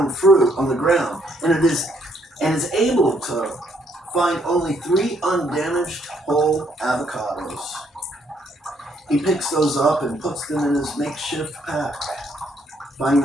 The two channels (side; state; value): both; normal; correlation 0.70